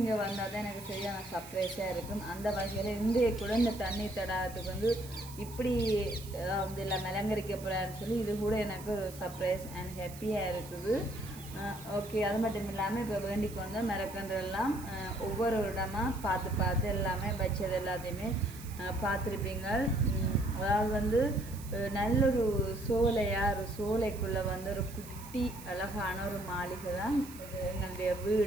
வந்தால் தான் எனக்கு சரியான சர்ப்ரைஸாக இருக்கும். அந்த வகையில் இன்றைய கூட இந்த தண்ணி தடாகத்துக்கு வந்து இப்படி வந்து எல்லாம் அலங்கரிக்க போகிறான்னு சொல்லி இது கூட எனக்கு ஒரு சர்ப்ரைஸ் அண்ட் ஹாப்பியாக இருக்குது. ஓகே, அது மட்டும் இல்லாமல் இப்போ வேண்டிக்கு வந்தால் மரக்கன்றெல்லாம் ஒவ்வொரு இடமாக பார்த்து எல்லாமே வச்சது எல்லாத்தையுமே பார்த்துருப்பீங்க. அதாவது வந்து நல்லொரு ஒரு சோலைக்குள்ளே வந்து ஒரு குட்டி அழகான ஒரு மாளிகை தான் இது எங்களுடைய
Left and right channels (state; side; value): noise; right; hiss, 17 dB below the sound